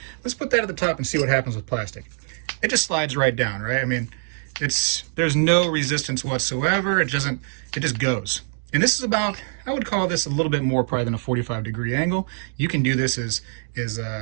Let's put that at the top and see what happens with plastic. It just slides right down, right? I mean, there's no resistance whatsoever. It just goes. And this is about, I would call this a little bit more probably than a 45-degree angle. You can do this as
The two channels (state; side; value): silent; left; digital silence